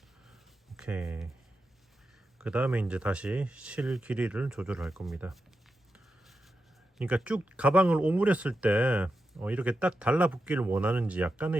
오케이. 그 다음에 이제 다시 실 길이를 조절할 겁니다. 그러니까 쭉 가방을 오므렸을 때 이렇게 딱 달라붙기를 원하는지,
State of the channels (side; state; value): both; normal; correlation 0.88